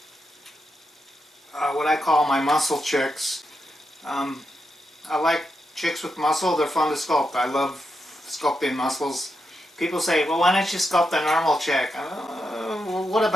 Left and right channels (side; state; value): both; normal; correlation 0.85